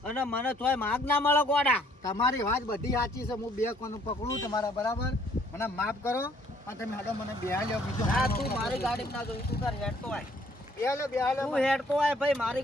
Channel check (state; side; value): normal; both; correlation 0.62